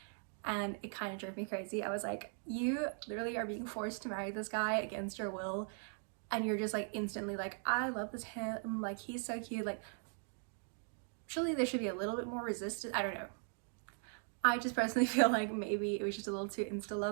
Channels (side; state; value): left; silent; 52 dB below the other